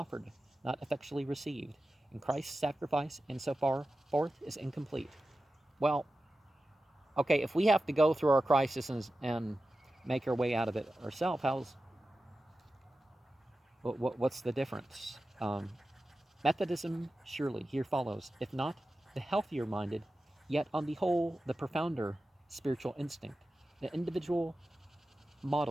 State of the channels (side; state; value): both; normal; correlation 0.93